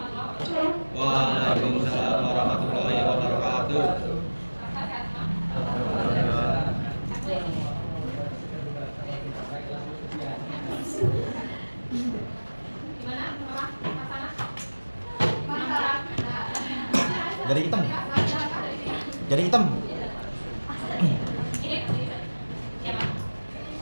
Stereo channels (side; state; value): both; inverted; correlation -1.00